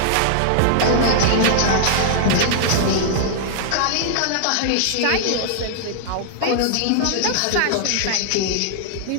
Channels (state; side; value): different; both; correlation -0.01